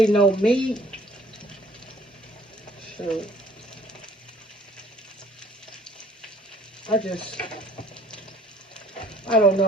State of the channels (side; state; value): both; normal; correlation 0.56